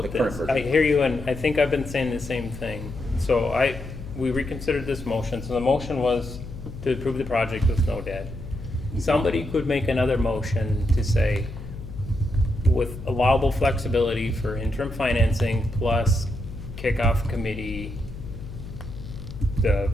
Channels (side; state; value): left; noise; hum, 11 dB below the sound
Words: the current this? version. I hear you, and I think I've been saying the same thing. So we reconsidered this motion, so the motion was to approve the project with no debt. Somebody could make another motion to say, with allowable flexibility for interim financing plus kickoff committee, the